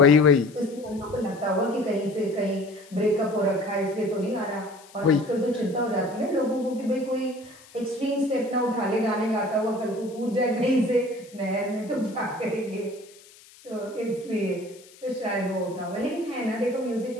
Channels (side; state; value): left; noise; hiss, 24 dB below the sound